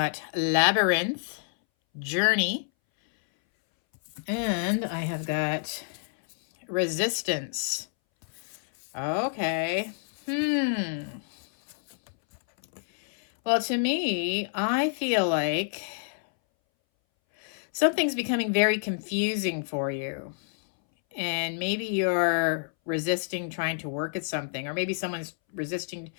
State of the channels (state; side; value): silent; right; 59 dB below the other